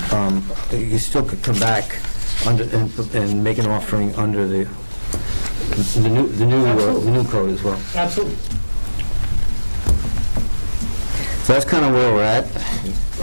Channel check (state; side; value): inverted; both; correlation -1.00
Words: you still could come back under and make an offering under the new code as well. Absolutely. So that's kind of where we're at.